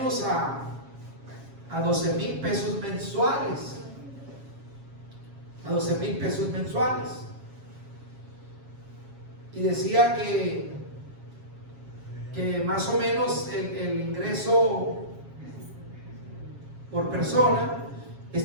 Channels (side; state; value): left; late; 7.3 ms